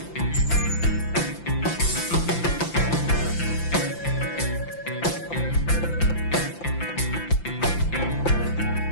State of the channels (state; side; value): late; right; 5.9 ms